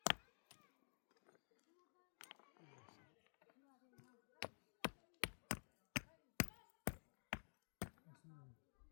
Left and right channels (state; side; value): silent; right; digital silence